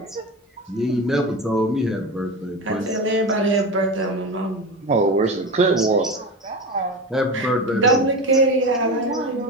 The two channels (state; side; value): normal; both; correlation 0.25